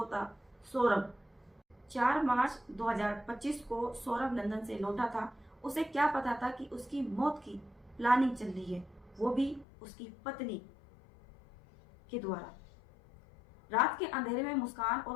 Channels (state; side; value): drops out; right; at 9.7 s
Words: था सौरभ। 4 मार्च 2025 को सौरभ लंदन से लौटा था। उसे क्या पता था कि उसकी मौत की प्लानिंग चल रही है, वो भी उसकी पत्नी के द्वारा। रात के अंधेरे में मुस्कान और